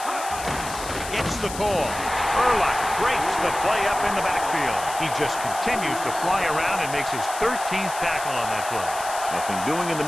Gets the call. Urlacher breaks the play up in the backfield. He just continues to fly around and makes his 13th tackle on that play. Nothing doing in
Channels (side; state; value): left; noise; hiss, 11 dB below the sound